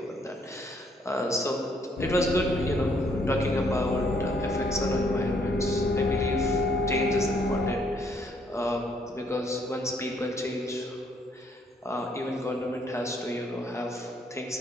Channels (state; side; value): normal; both; correlation 0.68